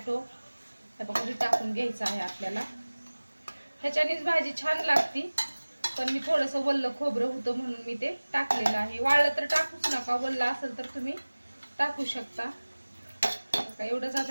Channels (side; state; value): both; inverted; correlation -1.00